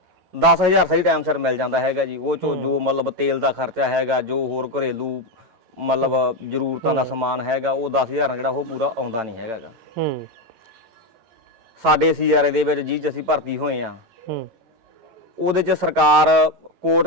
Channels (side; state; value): left; late; 11 ms